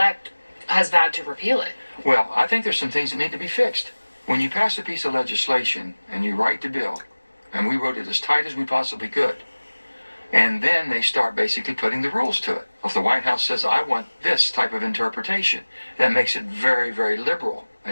has vowed to repeal it. Well, I think there's some things that need to be fixed. When you pass a piece of legislation and you write the bill, and we wrote it as tight as we possibly could, and then they start basically putting the rules to it. If the White House says, I want this type of interpretation, that makes it very, very liberal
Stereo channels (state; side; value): inverted; both; correlation -1.00